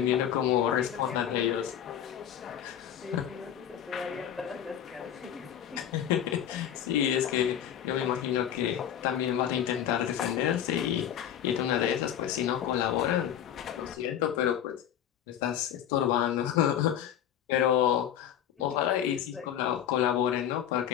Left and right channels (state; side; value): quieter; right; 10.1 dB